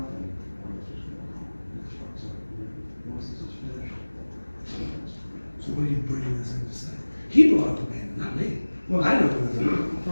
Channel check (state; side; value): inverted; both; correlation -1.00